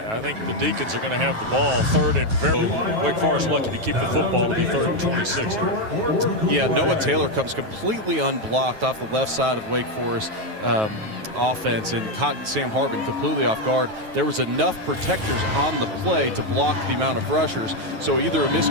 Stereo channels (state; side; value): late; left; 9.3 ms